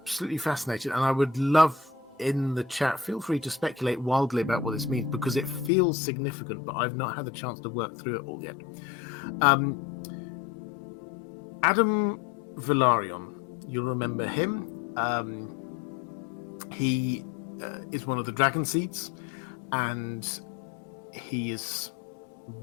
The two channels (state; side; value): drops out; right; at 5.7 s